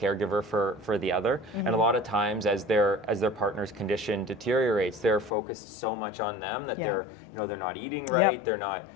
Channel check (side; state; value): right; drops out; at 5.3 s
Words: for the other, and a lot of times as their partner's condition deteriorates, they're focused so much on them that they're not eating right, they're not